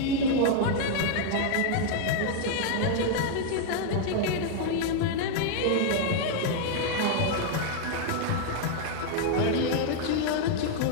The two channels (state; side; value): different; both; correlation 0.00